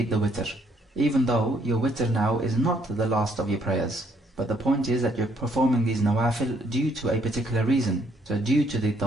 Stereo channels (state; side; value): normal; both; correlation 0.68